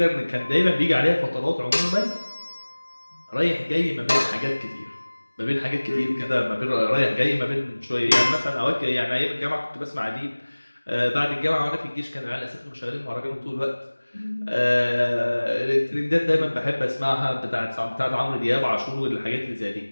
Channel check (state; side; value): inverted; both; correlation -1.00